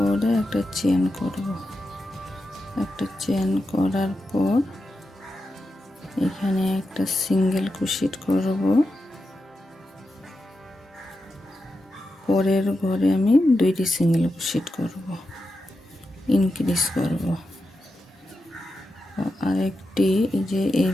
একটা চেন করব। একটা চেন করার পর এখানে একটা সিঙ্গেল ক্রোশেট করব। পরের ঘরে আমি দুইটি সিঙ্গেল ক্রোশেট করব, ইনক্রিজ করব। আরেকটি এই যে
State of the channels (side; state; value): both; normal; correlation 0.89